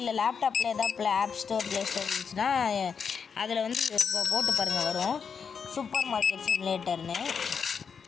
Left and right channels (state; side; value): quieter; right; 6.3 dB